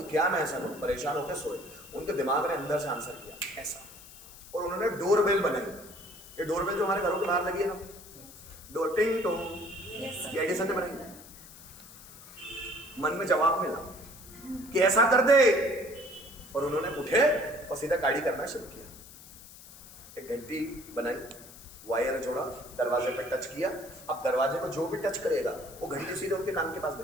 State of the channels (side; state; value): left; noise; hiss, 18 dB below the sound